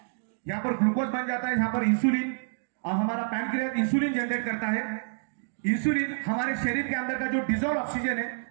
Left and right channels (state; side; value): silent; left; digital silence